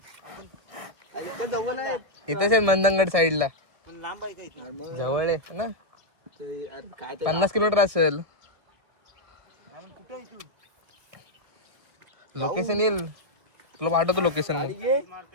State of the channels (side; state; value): left; late; 1.6 ms